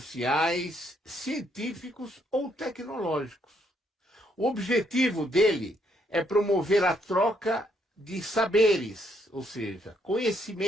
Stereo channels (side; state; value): both; normal; correlation 0.72